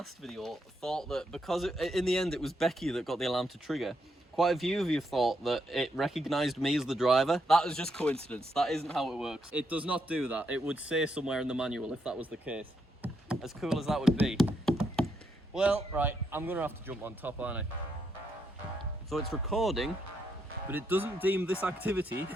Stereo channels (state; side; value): normal; both; correlation 0.79